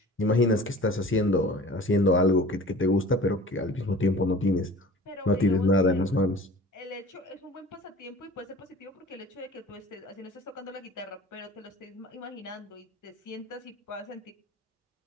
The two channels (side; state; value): both; normal; correlation 0.42